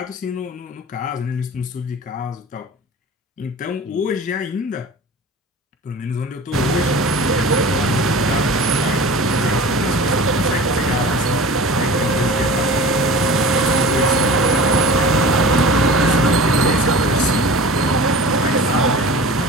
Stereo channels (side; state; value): both; normal; correlation 0.37